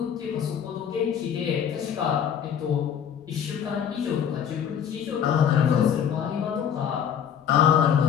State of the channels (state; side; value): quieter; right; 8.5 dB